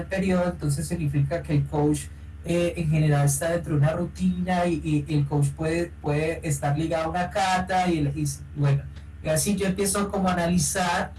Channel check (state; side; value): identical; both; correlation 1.00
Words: periodo, entonces significa que el coach en general está dentro de una rutina y el coach puede estar ligado a una cata y bueno, y así yo empiezo como a analizar